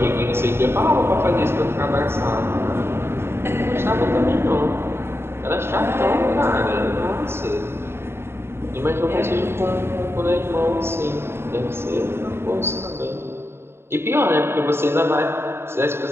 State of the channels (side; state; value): left; late; 0.12 ms